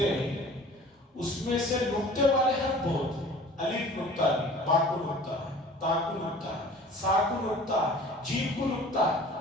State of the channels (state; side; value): normal; both; correlation 0.45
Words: ہیں اس میں سے نقطے والے حرف بہت ہیں، الف نقطہ نہیں، با کو نقطہ ہے، تا کو نقطہ ہے، سا کو نقطہ ہے، جیم کو نقطہ ہے،